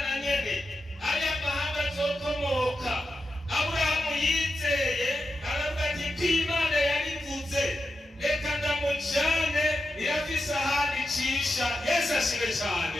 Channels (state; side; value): normal; both; correlation 0.89